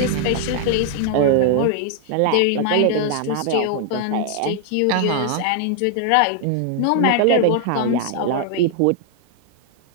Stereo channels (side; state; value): both; different; correlation 0.00